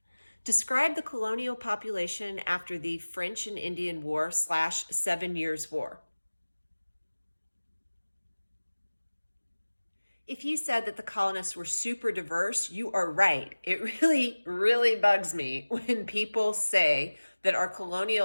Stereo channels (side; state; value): both; inverted; correlation -1.00